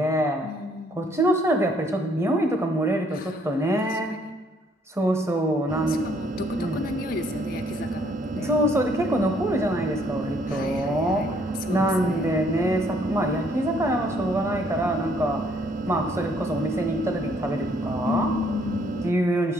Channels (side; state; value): both; normal; correlation 0.65